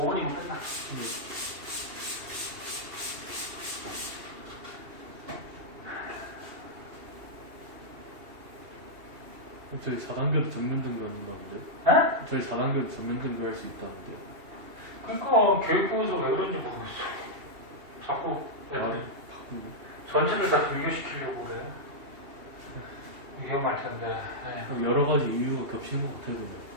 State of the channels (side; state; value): left; late; 2.8 ms